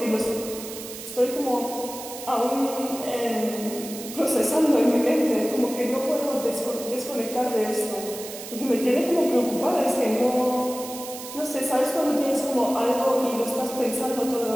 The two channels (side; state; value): right; noise; hiss, 11 dB below the sound